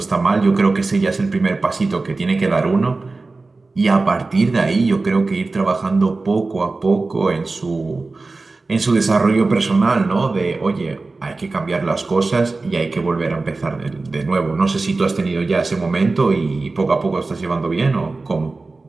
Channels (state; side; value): quieter; left; 3.6 dB